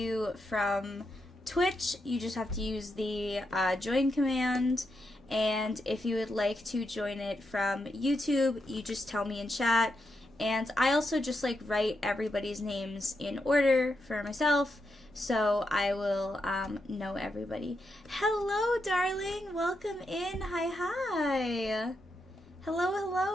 from Twitch, you just have to use the join command. And if you would like to join it from YouTube, you just tell me in chat. And I also just write everybody's names in order for myself, so I will know everybody. Hello, darling. Welcome in. Hi.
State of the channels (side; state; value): both; normal; correlation 0.84